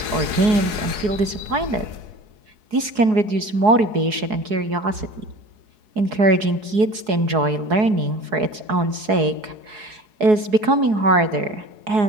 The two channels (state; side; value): late; left; 4.7 ms